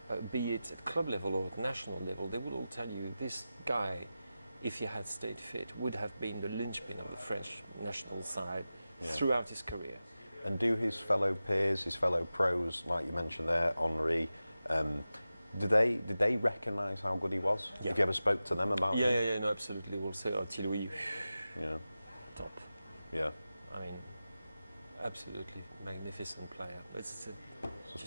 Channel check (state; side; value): inverted; both; correlation -0.94